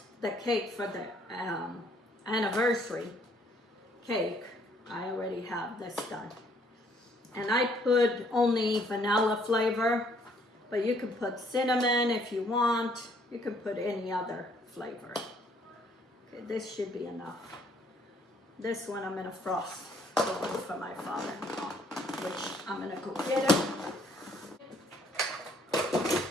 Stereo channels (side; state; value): both; normal; correlation 0.64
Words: the cake for the anniversary cake, I already have this done. And I put only vanilla flavor, but you can put cinnamon if you want. You can put any other flavor. Okay, this should be enough. This one I'm gonna frost the one for my father-in-law, which I'm gonna go get it.